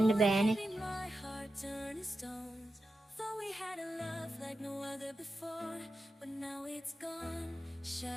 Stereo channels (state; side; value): normal; both; correlation 0.91